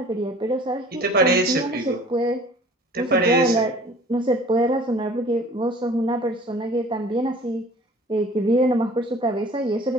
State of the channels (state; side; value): normal; both; correlation 0.48